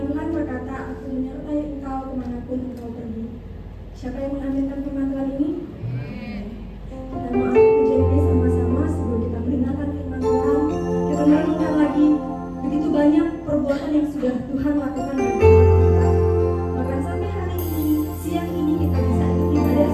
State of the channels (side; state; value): both; identical; correlation 1.00